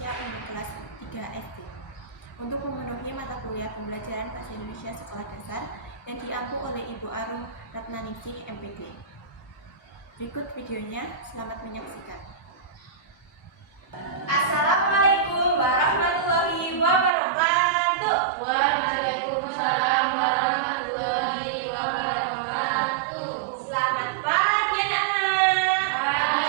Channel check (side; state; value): left; drops out; at 17.1 s